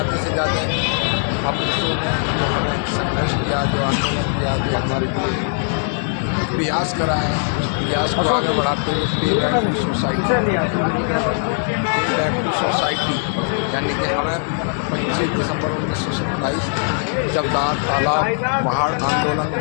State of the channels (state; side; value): silent; right; digital silence